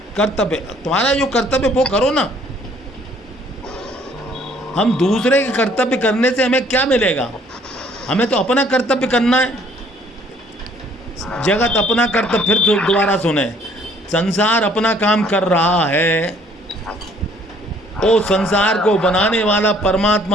कर्तव्य। तुम्हारा जो कर्तव्य वो करो ना। हम दूसरे के कर्तव्य करने से हमें क्या मिलेगा? हमें तो अपना कर्तव्य करना है। जगत अपना कर्तव्य, फिर दोबारा सुने, संसार अपना काम कर रहा है, वो संसार को बनाने वाला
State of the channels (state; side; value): normal; both; correlation 0.60